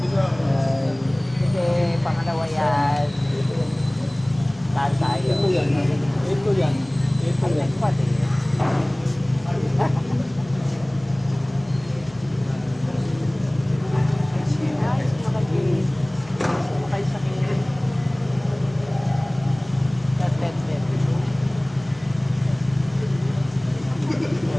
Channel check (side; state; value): left; noise; hum, 23 dB below the sound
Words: Pangalawa yan. Saan tayo? Ito yan. Ito yan. Ito yan. Pati.